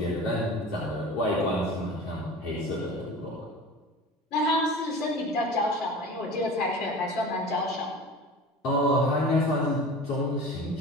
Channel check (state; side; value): normal; both; correlation 0.36